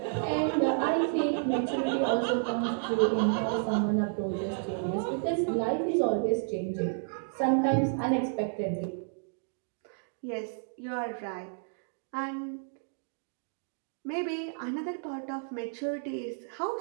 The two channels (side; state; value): left; silent; digital silence